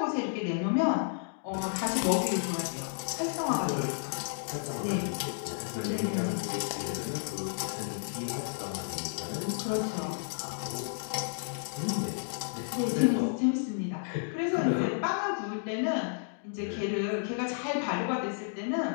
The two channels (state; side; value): silent; right; digital silence